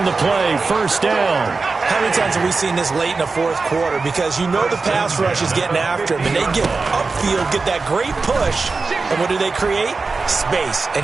the play, 1st down. How many times have we seen this late in the 4th quarter? Because you know the pass rush is getting after him, and they get upfield, get that great push, and what do they create? Space, and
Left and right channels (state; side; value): quieter; left; 4.1 dB